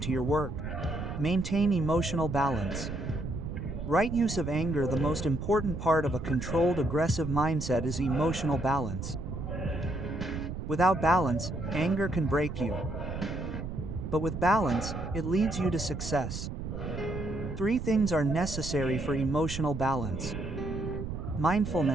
your work. Maintain emotional balance. Right use of anger. The most important part of a controlled aggressive mindset is emotional balance. Without balance, anger can break you. But with balance, it leads you to success. 3 things are necessary for emotional balance:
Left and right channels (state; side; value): noise; right; rumble, 6 dB below the sound